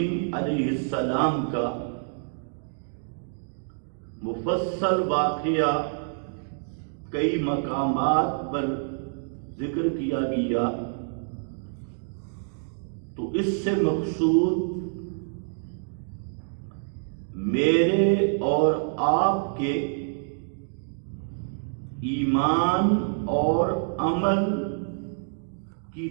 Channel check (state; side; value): silent; left; digital silence